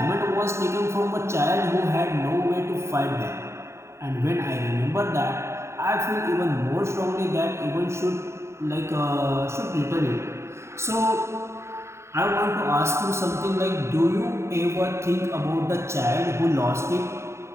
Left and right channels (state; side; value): late; left; 0.13 ms